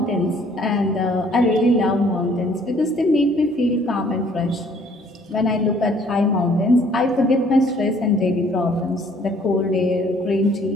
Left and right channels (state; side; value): normal; both; correlation 0.60